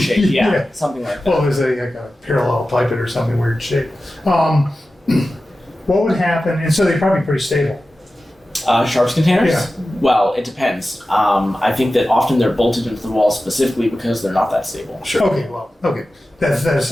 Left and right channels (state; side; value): normal; both; correlation 0.94